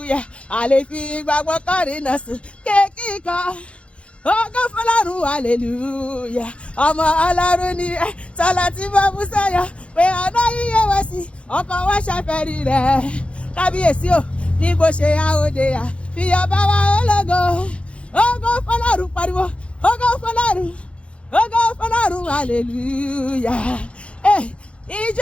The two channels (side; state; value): right; late; 0.060 ms